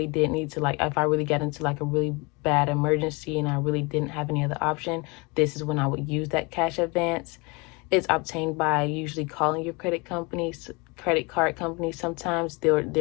did need to, if I really got into like a really bad emergency and I really didn't have any other option, this is when I would use that cash advance. It's obtained by usually calling your credit companies credit card companies, sometimes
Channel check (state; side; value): quieter; right; 27.9 dB